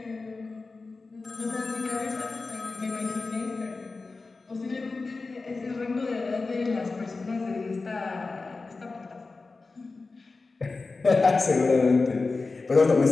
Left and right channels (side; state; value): right; quieter; 3.8 dB